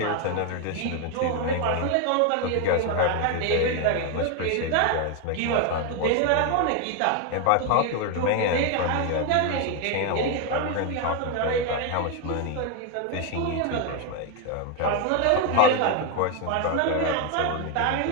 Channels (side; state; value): both; different; correlation 0.01